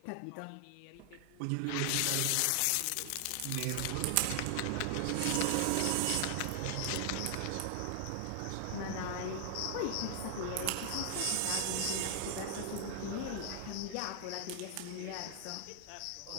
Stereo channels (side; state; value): both; different; correlation 0.00